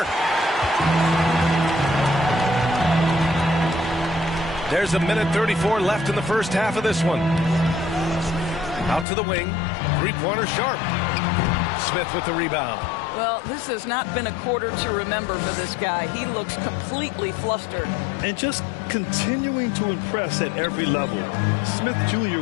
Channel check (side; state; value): right; drops out; at 9.1 s